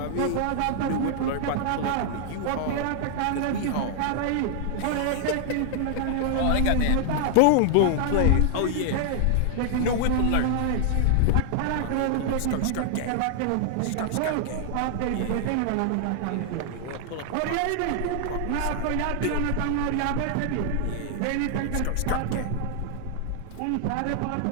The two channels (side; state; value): both; different; correlation 0.00